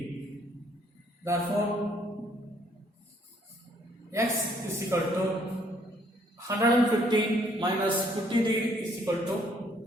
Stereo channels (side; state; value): both; normal; correlation 0.65